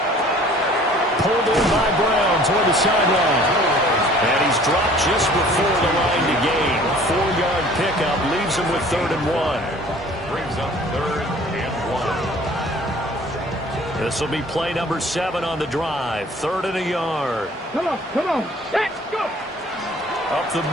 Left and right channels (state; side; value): normal; both; correlation 0.51